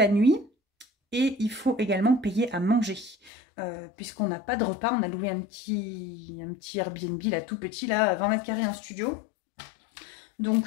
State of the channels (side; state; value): right; drops out; at 3.3 s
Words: nuit. Et il faut également payer à manger, puisqu'on n'a pas de repas. On a loué un petit Airbnb, là, tout petit, là, 20 mètres carrés, un studio.